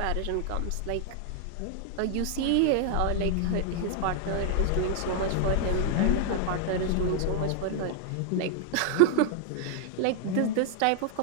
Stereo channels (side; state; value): both; different; correlation 0.00